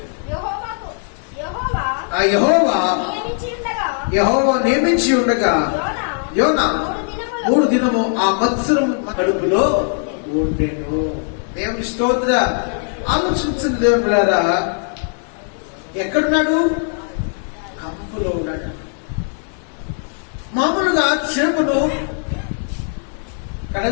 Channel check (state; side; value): silent; right; 57 dB below the other